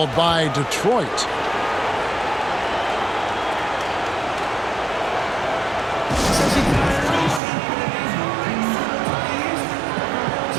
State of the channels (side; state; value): left; drops out; at 7.4 s